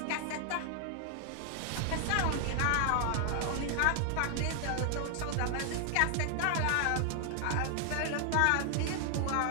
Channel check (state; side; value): different; both; correlation 0.00